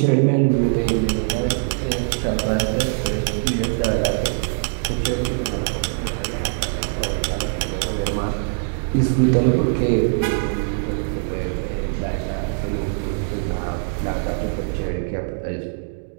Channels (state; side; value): silent; left; digital silence